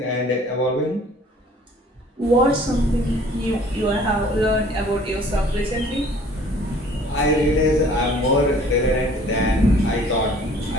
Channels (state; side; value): normal; both; correlation 0.53